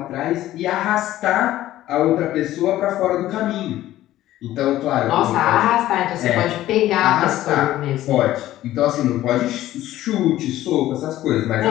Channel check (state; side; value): quieter; right; 14.3 dB